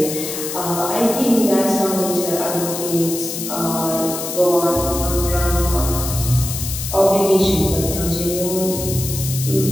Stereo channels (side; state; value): left; noise; hiss, 6 dB below the sound